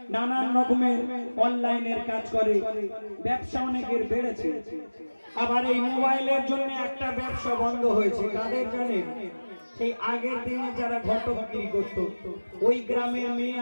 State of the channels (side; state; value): both; inverted; correlation -1.00